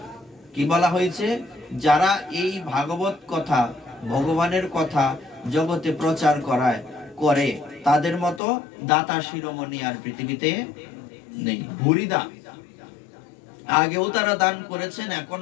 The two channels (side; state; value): right; drops out; at 8.4 s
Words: কি বলা হয়েছে? যারা এই ভাগবত কথা, ভগবানের কথা জগতে প্রচার করে তাদের মতো দাতা শিরোমণি আর পৃথিবীতে নেই। ভুরিদা, আগেও তারা দান করেছেন,